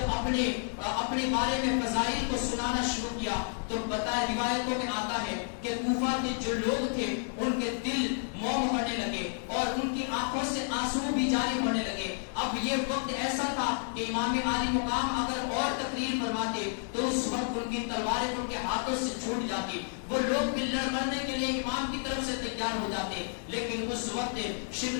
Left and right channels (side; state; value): right; silent; 57 dB below the other